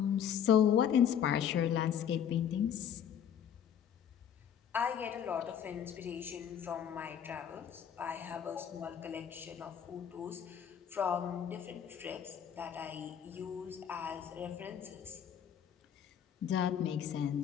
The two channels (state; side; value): quieter; right; 8.7 dB